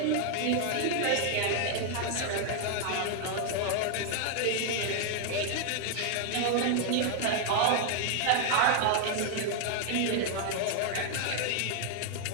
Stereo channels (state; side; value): different; both; correlation 0.00